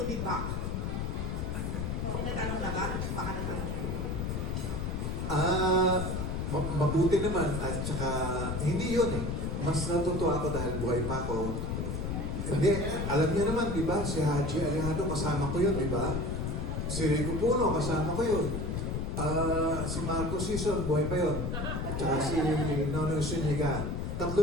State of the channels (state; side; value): noise; left; rumble, 2 dB below the sound